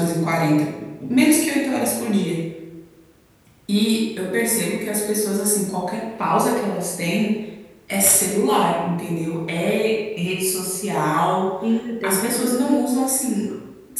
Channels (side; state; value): both; identical; correlation 1.00